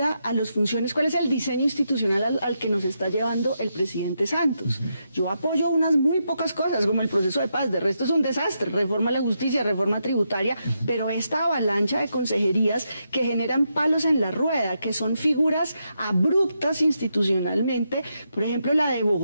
a las funciones, ¿cuál es el diseño institucional al que nos está llevando el presidente Santos? Yo apoyo unas muy pocas cosas, como el proceso de paz, de resto es un desastre, reforma a la justicia, reforma tributaria, pero esta avalancha de consejerías que generan palos en la rueda, que son figuras abruptas institucionalmente, por ejemplo la de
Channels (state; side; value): inverted; both; correlation -0.83